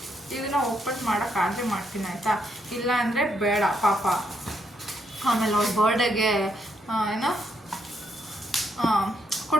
ಇದನ್ನು ಓಪನ್ ಮಾಡೋಕ್ಕಾದರೆ ಮಾಡ್ತೀನಿ ಆಯಿತಾ. ಇಲ್ಲ ಅಂದರೆ ಬೇಡ ಪಾಪ. ಆಮೇಲೆ ಅವ್ಳ ಬರ್ಡೇಗೆ ಏನೋ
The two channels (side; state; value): both; normal; correlation 0.76